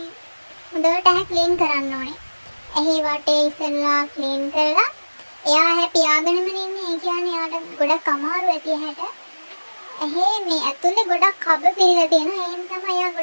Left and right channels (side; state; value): both; inverted; correlation -1.00